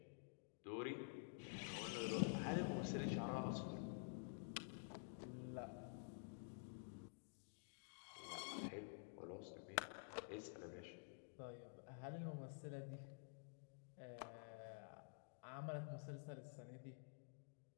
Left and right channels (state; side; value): silent; right; digital silence